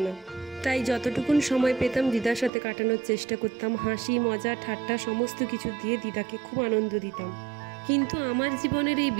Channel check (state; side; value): drops out; left; at 2.5 s